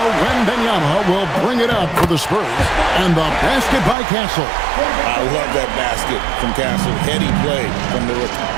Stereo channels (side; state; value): left; drops out; at 4.0 s